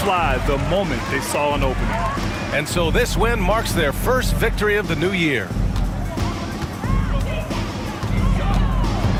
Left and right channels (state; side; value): identical; both; correlation 1.00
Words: the moment they saw an opening. And so this win marks their first victory of the new year.